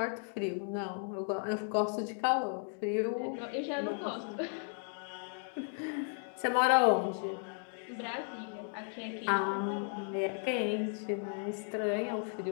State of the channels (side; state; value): right; silent; 54 dB below the other